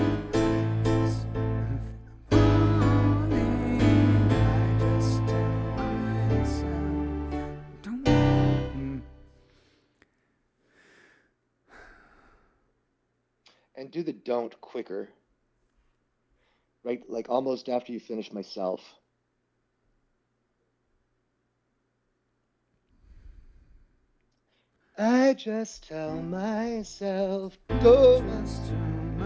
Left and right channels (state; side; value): identical; both; correlation 1.00